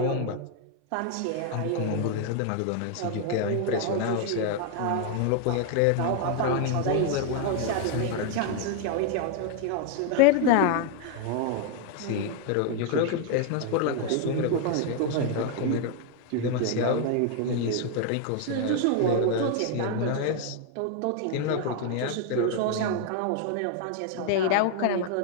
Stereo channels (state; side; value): different; both; correlation 0.00